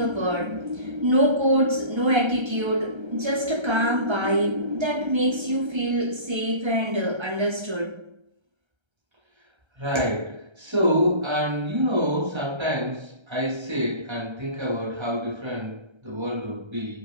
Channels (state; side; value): late; left; 1.3 ms